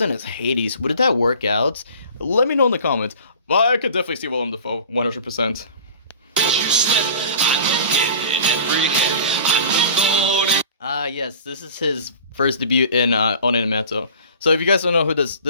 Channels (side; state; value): both; inverted; correlation -0.42